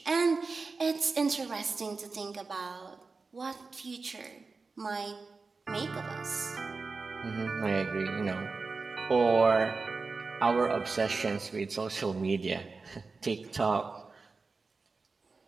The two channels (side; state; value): left; quieter; 4.2 dB